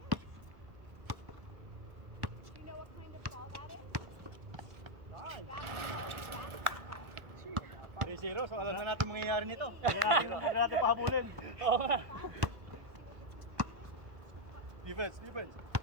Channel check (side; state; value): left; late; 1.4 ms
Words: Nice. 3-0, so alam na natin mangyayari nito. Hindi na natin pahabulin. Oo nga. Defense.